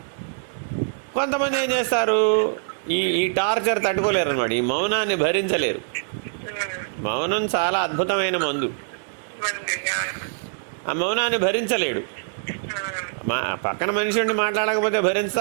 కొంతమంది ఏం చేస్తారు? ఈ టార్చర్ తట్టుకోలేరు అన్నమాట, ఈ మౌనాన్ని భరించలేరు. మౌనం చాలా అద్భుతమైన మందు. ఆ మౌనాన్ని భరించలేడు. పక్కన మనిషి ఉండి మాట్లాడకపోతే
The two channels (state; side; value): silent; left; digital silence